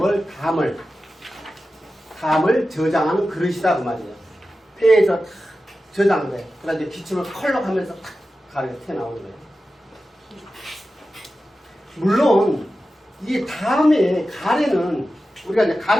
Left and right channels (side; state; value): both; normal; correlation 0.93